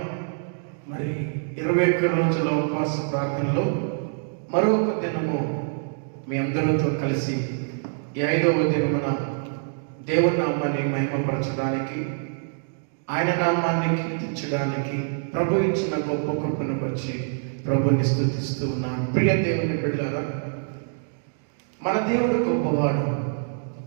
మరి 21 రోజుల ఉపవాస ప్రార్థనలో మరొక దినము మీ అందరితో కలిసి ఈ 5వ దినమున దేవుని నామాన్ని మహిమపరచడానికి, ఆయన నామాన్ని కీర్తించడానికి ప్రభు ఇచ్చిన గొప్ప కృపను వచ్చి ప్రభుని స్తుతిస్తూ ఉన్నాను. ప్రియ దేవుని బిడ్డలారా, మన దేవుడు గొప్పవాడు,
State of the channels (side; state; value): left; silent; digital silence